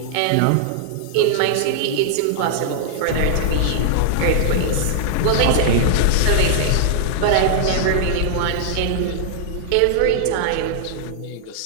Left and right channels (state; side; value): different; both; correlation -0.01